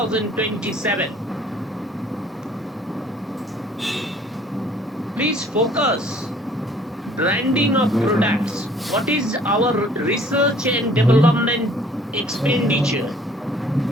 Please focus. Branding of products. What is our research and development expenditure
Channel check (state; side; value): normal; both; correlation 0.56